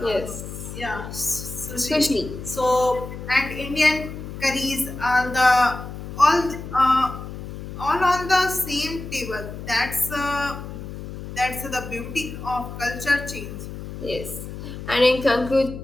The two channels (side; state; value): left; noise; hum, 10 dB below the sound